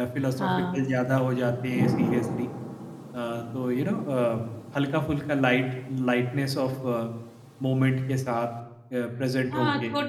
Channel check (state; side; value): identical; both; correlation 1.00